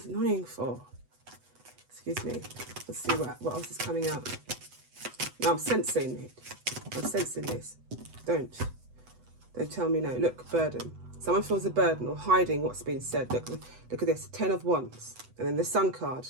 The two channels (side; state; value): left; late; 8.0 ms